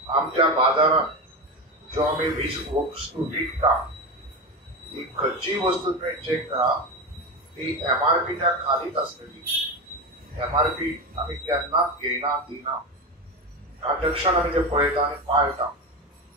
आमच्या बाजारात जो आम्ही वस्तू विकता ही खंयचीय वस्तू तुम्ही चेक करा ती MRPच्या खालीच असतली. MRP आम्ही केन्नाच घेयना दिना. ट्रान्झॅक्शन आम्ही ते पळयता आणि पाळटा.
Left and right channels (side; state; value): both; normal; correlation 0.19